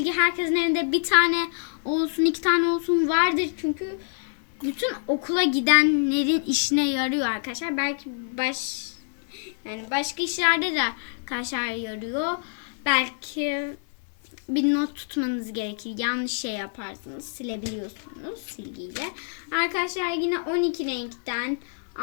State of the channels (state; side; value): silent; right; digital silence